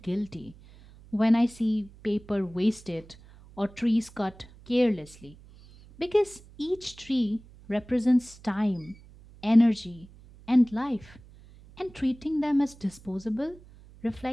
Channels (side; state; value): right; noise; hum, 22 dB below the sound